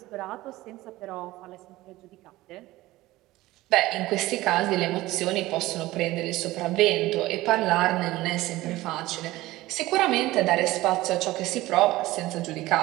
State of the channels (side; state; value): left; quieter; 17.8 dB